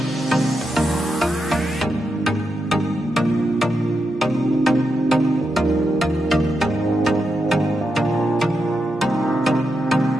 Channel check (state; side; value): normal; both; correlation 0.86